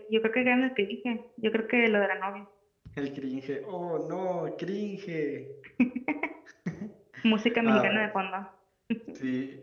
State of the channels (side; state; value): both; identical; correlation 1.00